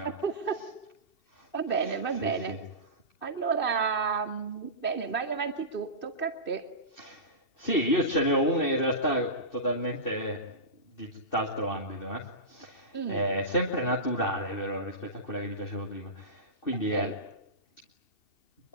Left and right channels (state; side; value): late; right; 2.6 ms